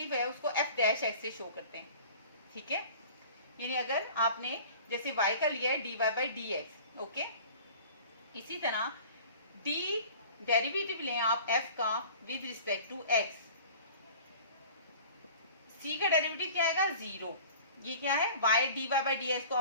है उसको एफ डैश एक्स से शो करते हैं, ठीक है। यानी अगर आपने जैसे y का लिया है dy बाय dx, ओके, इसी तरह d डेरिवेटिव लें आप f का with respect to x, c का डेरिवेटिव क्या आएगा, 0। ये क्या है, y dy बाय dx को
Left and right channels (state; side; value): inverted; both; correlation -0.44